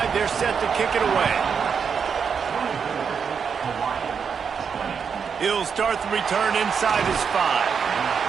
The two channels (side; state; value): left; quieter; 6.5 dB